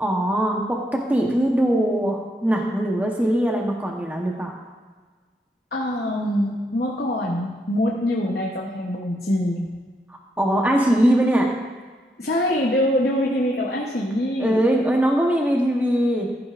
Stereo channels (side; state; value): both; normal; correlation 0.78